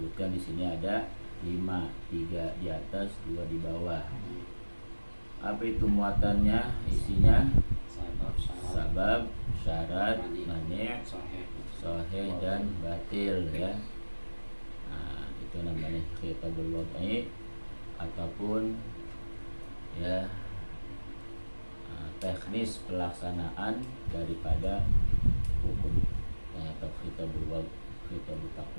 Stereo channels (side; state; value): both; inverted; correlation -1.00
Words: di sini ada 5, 3 di atas, 2 di bawah. Apa itu muatannya? Isinya sabab, syarat, mani', sahih dan batil ya. Nah, itu namanya khitabul wad'i ataupun ya teknis pelaksanaan daripada hukum atau khitabul wad'i, khitabul